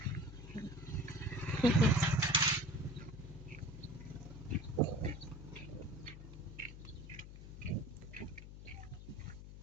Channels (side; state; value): left; noise; hum, 13 dB below the sound